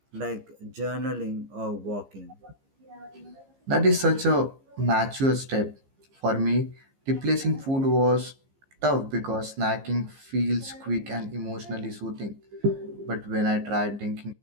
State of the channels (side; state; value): left; late; 15 ms